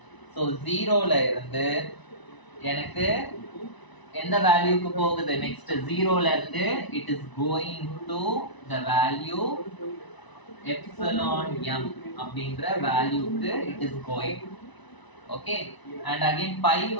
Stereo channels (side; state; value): right; late; 1.0 ms